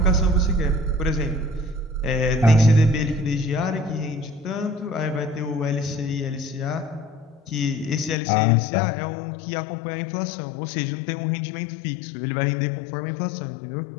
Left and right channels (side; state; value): right; drops out; at 8.2 s